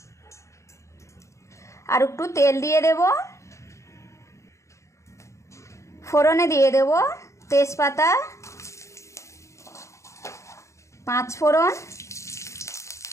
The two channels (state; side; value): late; right; 0.14 ms